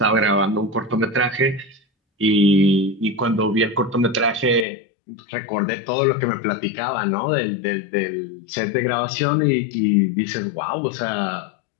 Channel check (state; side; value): drops out; right; at 4.7 s